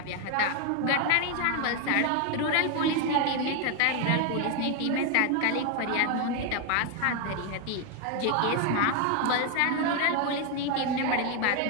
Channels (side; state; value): both; different; correlation 0.01